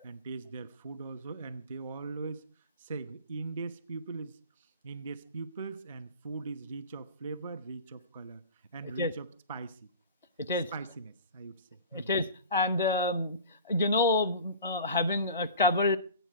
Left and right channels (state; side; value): inverted; both; correlation -0.37